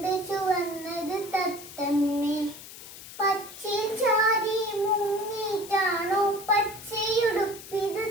ചുവന്നത് തത്തമ്മേ? പച്ചയിൽ ചാരി മുങ്ങിയിട്ടാണോ പച്ചയുടുപ്പിത്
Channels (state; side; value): noise; left; hiss, 15 dB below the sound